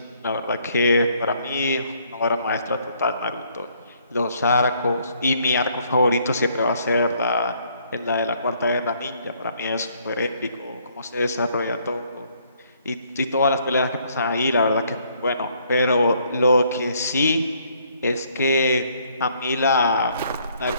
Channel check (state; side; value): inverted; both; correlation -0.66